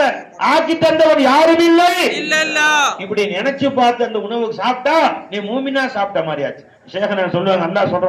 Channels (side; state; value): both; identical; correlation 1.00